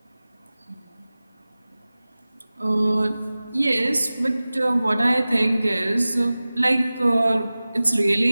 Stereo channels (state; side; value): inverted; both; correlation -0.98